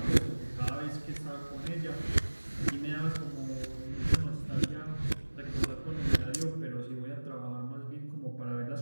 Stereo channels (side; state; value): both; inverted; correlation -1.00